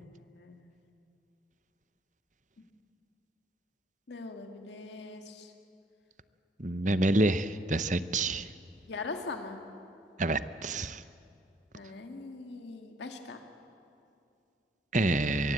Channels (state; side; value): normal; both; correlation 0.63